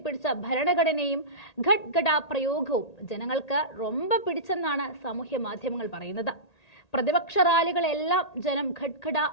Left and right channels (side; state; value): right; late; 1.8 ms